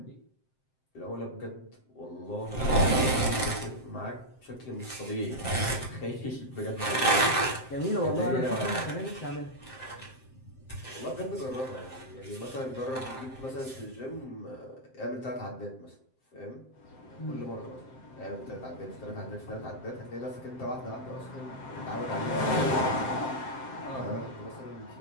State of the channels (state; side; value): late; right; 7.7 ms